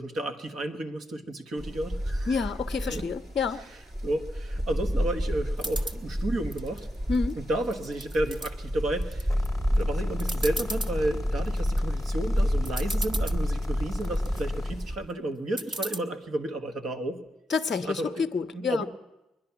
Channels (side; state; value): both; normal; correlation 0.86